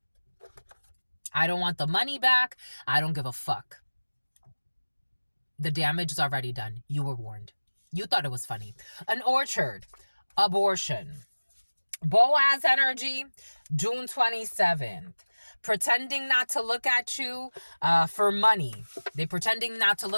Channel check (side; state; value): both; inverted; correlation -1.00